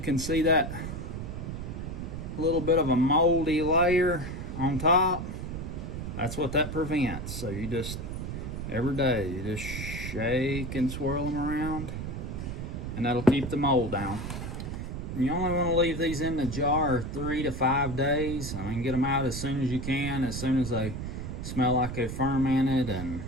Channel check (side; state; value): right; noise; rumble, 6 dB below the sound